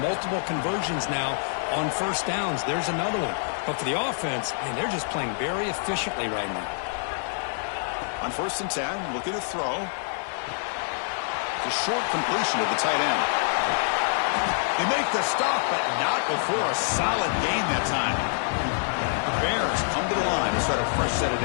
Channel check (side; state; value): right; silent; 61 dB below the other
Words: multiple conversions now on first downs. There's another one. But for the offense, man, they're just playing very efficiently right now. On first and 10, looking to throw. The short completion of the tight end. They make the stop, but not before a solid gain that time. The Bears come to the line to start a fresh set of